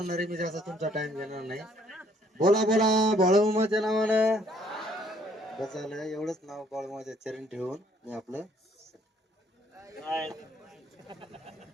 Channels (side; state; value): both; normal; correlation 0.63